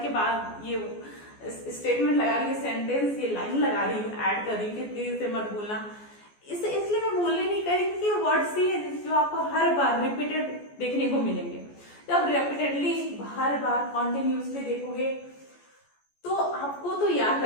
के बाद ये स्टेटमेंट लगा रही हूँ, सेंटेंस, ये लाइन लगा रही हूँ, ऐड कर रही हूँ, प्लीज इसे मत भूलना। इसे इसलिए मैं बोलने नहीं करी क्योंकि वर्ड से जो आपको हर बार रिपीटेड देखने को मिलेंगे। जब रिपीटेडली हर बार कॉन्टिन्यूसली देखोगे तो आपको तो याद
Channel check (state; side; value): late; right; 14 ms